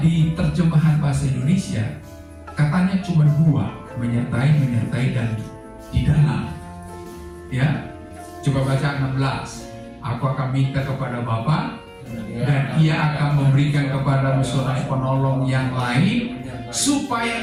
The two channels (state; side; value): identical; both; correlation 1.00